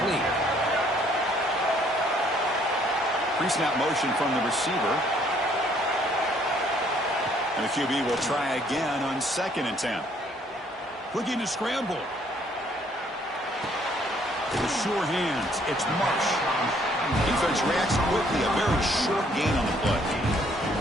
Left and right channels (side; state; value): both; normal; correlation 0.64